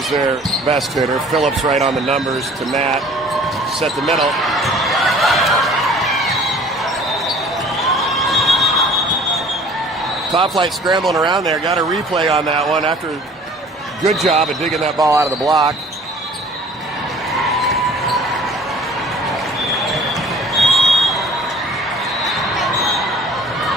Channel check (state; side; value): normal; both; correlation 0.49